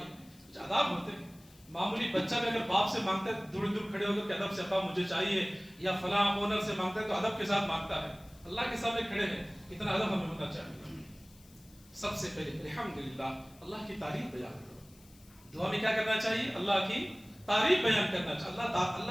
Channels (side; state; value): left; noise; hiss, 26 dB below the sound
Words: کچھ آداب ہوتے ہیں. معمولی بچہ بھی اگر باپ سے مانگتا ہے دور دور کھڑے ہو کر کہ ادب سے ابا مجھے چاہیے، یا فلاں اونر سے مانگتا ہے تو ادب کے ساتھ مانگتا ہے. اللہ کے سامنے کھڑے ہیں، اتنا ادب ہمیں ہونا چاہیے. سب سے پہلے الحمدللہ اللہ کی تعریف بیان کرو. دعا میں کیا کرنا چاہیے؟ اللہ کی تعریف بیان کرنا چاہیے.